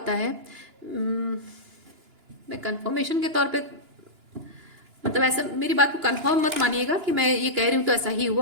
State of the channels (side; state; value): left; late; 2.9 ms